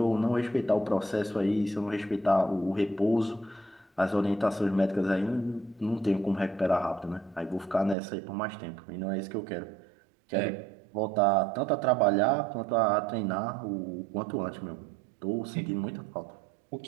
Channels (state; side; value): drops out; left; at 8.0 s